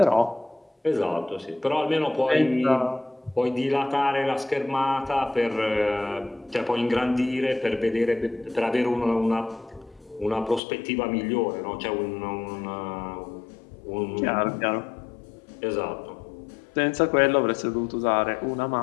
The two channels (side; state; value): right; drops out; at 10.6 s